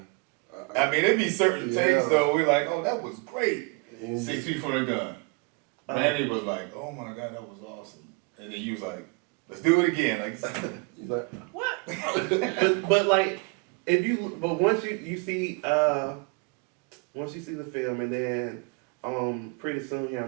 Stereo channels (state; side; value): quieter; left; 31.2 dB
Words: I mean, it'd be certain takes though. We're like, oh, that was great. 6 feet from the gun. Manny was like, oh my God, that was awesome. And then you was like, let's do it again. He's like, what? but once you see the film, and then pretty soon here